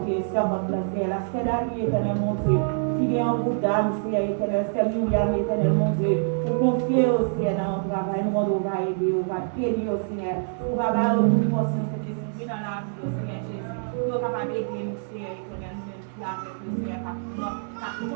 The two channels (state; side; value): silent; left; 61 dB below the other